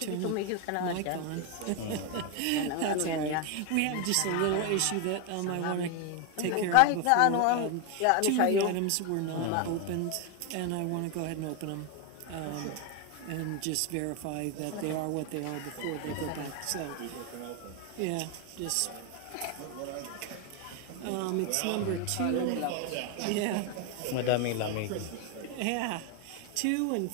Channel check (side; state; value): both; different; correlation 0.01